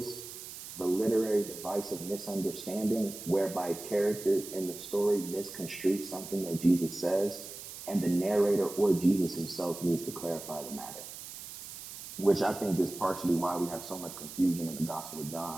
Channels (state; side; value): noise; right; hiss, 11 dB below the sound